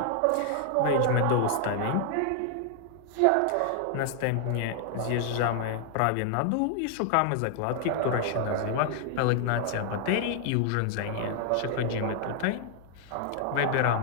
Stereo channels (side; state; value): both; different; correlation 0.00